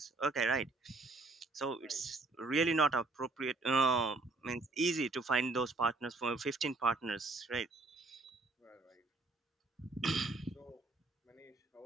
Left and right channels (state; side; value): quieter; left; 3.2 dB